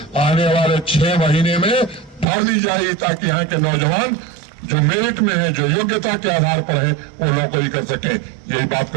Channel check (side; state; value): left; drops out; at 2.2 s